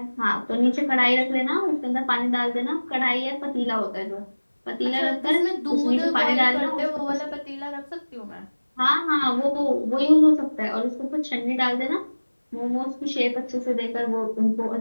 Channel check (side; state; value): both; inverted; correlation -1.00